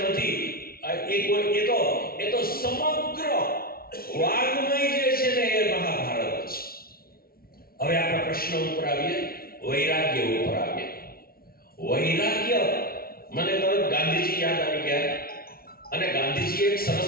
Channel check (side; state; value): right; late; 0.44 ms